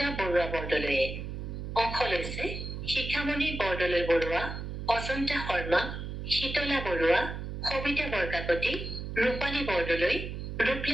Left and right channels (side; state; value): right; noise; hum, 6 dB below the sound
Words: বৰুৱা বৰদলৈয়ে। অংশ লৈছে শিখামণি বৰদলৈ বৰুৱা, অজন্তা শৰ্মা, শীতলা বৰুৱা, সবিতা বৰকাকতি, ৰূপালী বৰদলৈ,